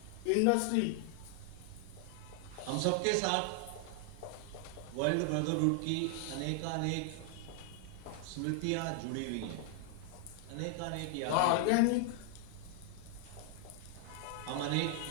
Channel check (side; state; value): both; different; correlation 0.00